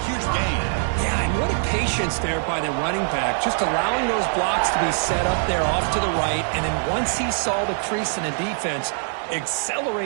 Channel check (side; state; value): left; silent; 56 dB below the other